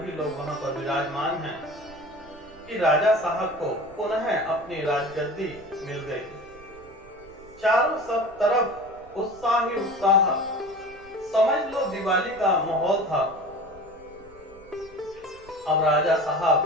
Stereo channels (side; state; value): right; noise; rumble, 23 dB below the sound